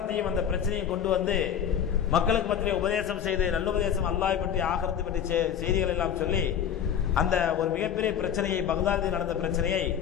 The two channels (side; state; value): right; quieter; 8.7 dB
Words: அந்த பிரச்சனையும் கொண்டு வந்து மக்களுக்கு மத்தியிலே உபதேசம் செய்து, நல்லுபதேசம், அல்லாஹ்வை பற்றி ஆகிரத்தை பற்றி செய்திகள் எல்லாம் சொல்லி அந்த ஒரு மிகப்பெரிய பிரச்சனையை, பக்தாதில் நடந்த பிரச்சனையை